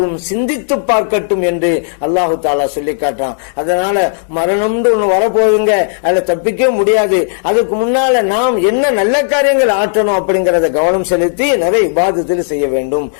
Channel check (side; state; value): right; silent; digital silence